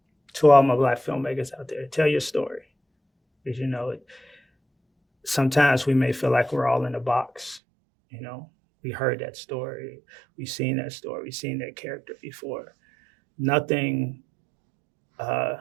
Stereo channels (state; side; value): drops out; left; at 7.6 s